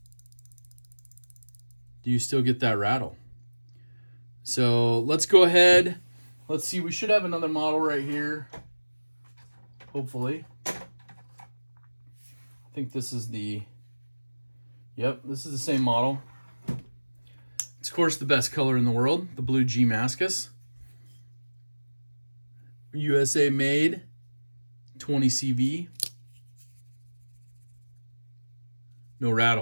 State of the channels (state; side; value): inverted; both; correlation -1.00